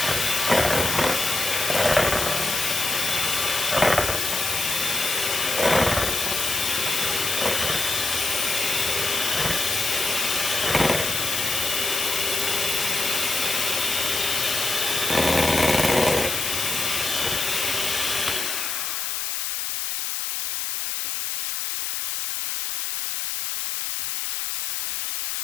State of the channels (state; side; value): noise; left; hiss, 2 dB below the sound